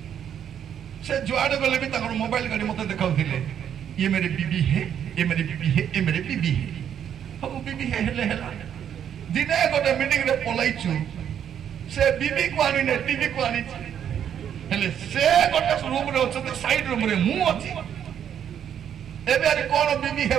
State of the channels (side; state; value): left; quieter; 9.1 dB